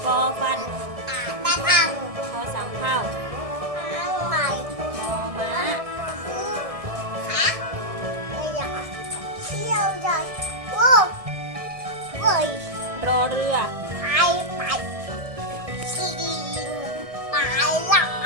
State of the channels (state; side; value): late; left; 1.6 ms